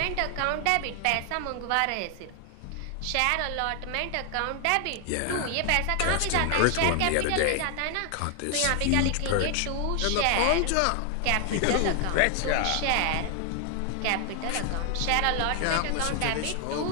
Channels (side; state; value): both; different; correlation 0.00